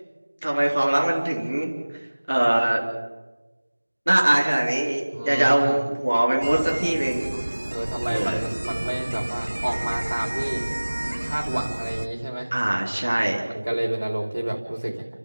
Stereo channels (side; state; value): both; inverted; correlation -1.00